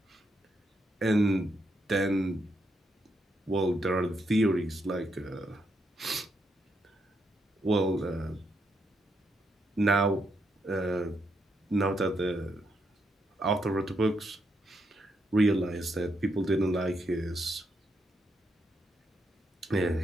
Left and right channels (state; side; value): normal; both; correlation 0.79